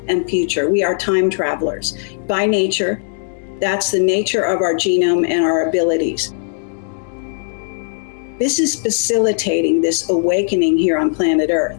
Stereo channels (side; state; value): right; silent; digital silence